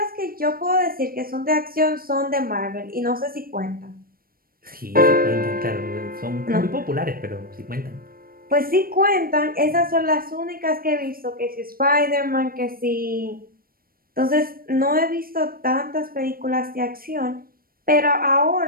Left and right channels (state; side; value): late; left; 0.43 ms